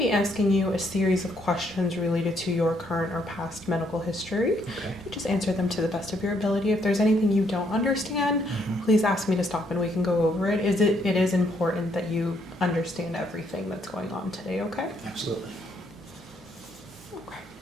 be asking you a series of questions related to your current or past medical history. Okay. Just answer them to the best of your ability. If there's anything you don't understand, please ask me to stop and we can go over it. It is important that you understand everything that's going on today, okay? Absolutely.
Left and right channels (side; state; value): both; normal; correlation 0.71